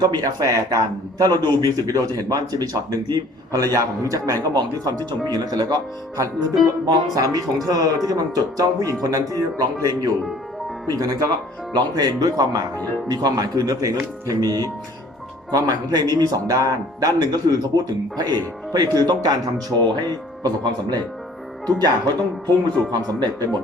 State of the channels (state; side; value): normal; both; correlation 0.54